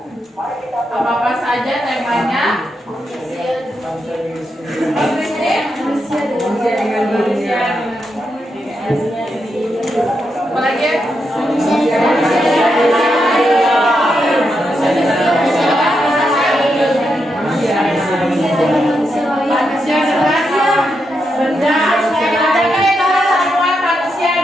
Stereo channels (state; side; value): normal; both; correlation 0.84